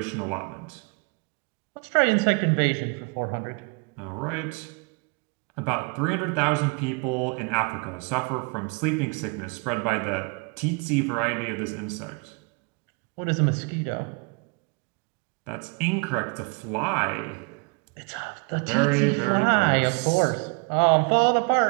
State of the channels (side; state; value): left; quieter; 33.4 dB